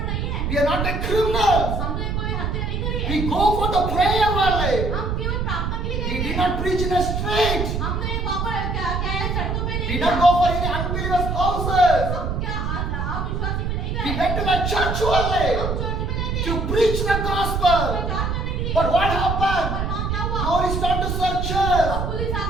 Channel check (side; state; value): right; noise; rumble, 1 dB below the sound